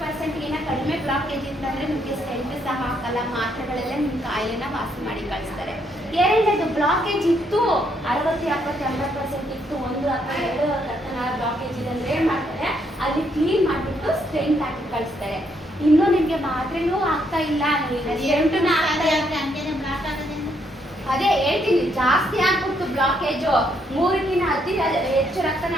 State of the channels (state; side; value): normal; both; correlation 0.73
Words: ಕಡಿಮೆ ಬ್ಲಾಕೇಜ್ ಇತ್ತಂದ್ರೆ ನಿಮ್ಗೆ ಸ್ಟೆಂಟ್ ಸಹ ಹಾಕಲ್ಲ, ಮಾತ್ರೆಗಳೆಲ್ಲ ನಿಮ್ ಕಾಯಿಲೆನ ವಾಸಿ ಮಾಡಿ ಕಳಿಸ್ತಾರೆ. ಎರಡನೇದು ಬ್ಲಾಕೇಜ್ ಇತ್ತು, 60, 70, 80% ಇತ್ತು, 1 ಅಥವಾ 2 ರಕ್ತನಾಳ ಬ್ಲಾಕೇಜ್ ಇದೆ ಅಂದ್ರೆ ಏನ್ ಮಾಡ್ತಾರೆ, ಅಲ್ಲಿ ಕ್ಲೀನ್ ಮಾಡ್ಬಿಟ್ಟು ಸ್ಟೆಂಟ್ ಹಾಕಿ ಕಳಿಸ್ತಾರೆ. ಇನ್ನು ನಿಮ್ಗೆ ಮಾತ್ರೆನೂ ಆಗ್ತಾ ಇಲ್ಲ, ಅದೇ ಹೇಳ್ತೀನಿ, ಜಾಸ್ತಿ ಆಗ್ಬಿಟ್ಟು ಬ್ಲಾಕೇಜು 3ಕ್ಕಿಂತ ಹೆಚ್ಚು